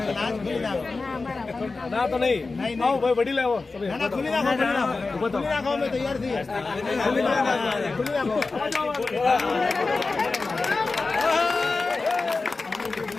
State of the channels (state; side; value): quieter; right; 3.8 dB